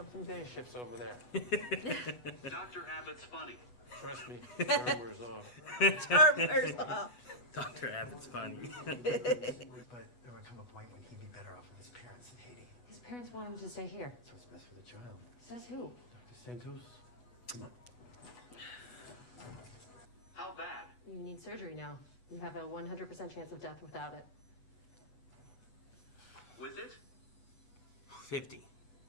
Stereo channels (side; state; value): right; late; 8.1 ms